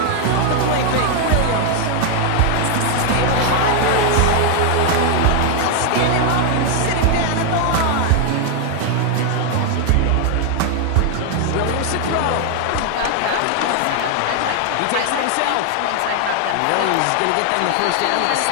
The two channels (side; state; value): both; different; correlation 0.00